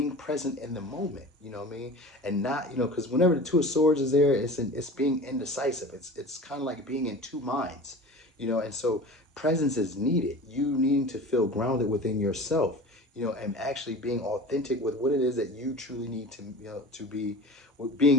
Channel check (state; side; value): normal; both; correlation 0.37